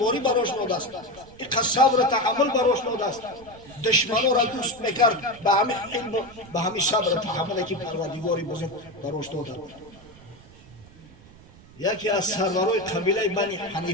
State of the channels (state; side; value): noise; right; rumble, 22 dB below the sound